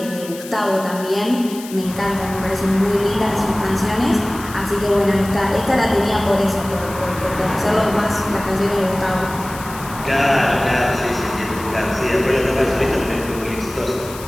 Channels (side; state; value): left; noise; hiss, 15 dB below the sound